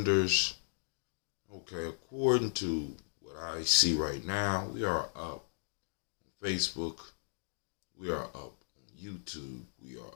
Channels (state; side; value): silent; right; digital silence